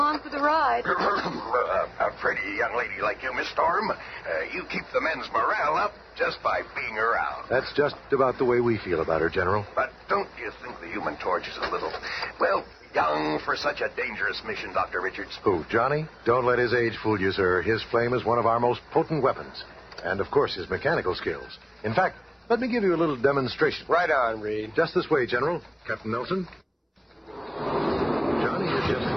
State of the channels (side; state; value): both; identical; correlation 1.00